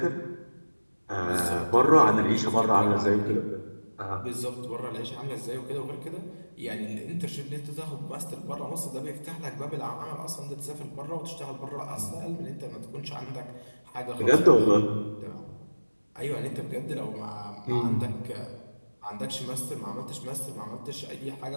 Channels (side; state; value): both; inverted; correlation -1.00